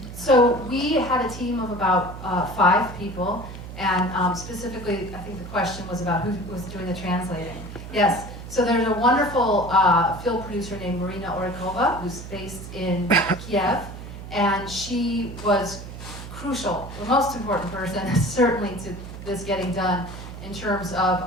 So we had a team of about 5 people, and specifically, I think the question was about who was doing the translating. Yes, so there's a wonderful film producer named Marina Orikova, who's based in Kiev, and she was crucial, the most important person, certainly to this getting done, in terms of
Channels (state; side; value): noise; right; hum, 11 dB below the sound